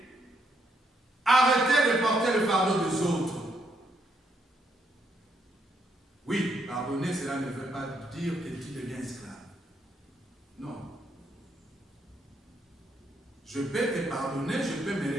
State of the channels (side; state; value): both; normal; correlation 0.75